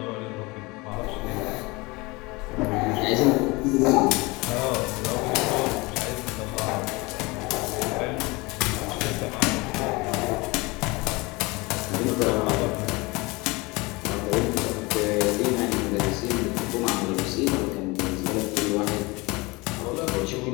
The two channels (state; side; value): quieter; right; 24.5 dB